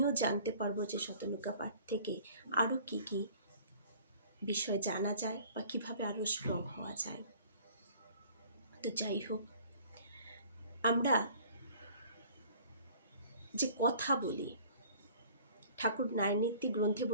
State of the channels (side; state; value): both; inverted; correlation -0.51